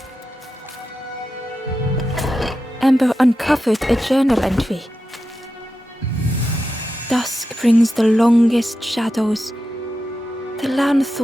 Ember uncovered a journal entry. "Dusk brings the longest shadows. The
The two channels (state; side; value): normal; both; correlation 0.90